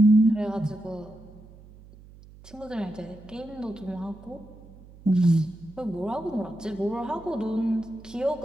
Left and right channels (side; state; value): right; noise; hum, 21 dB below the sound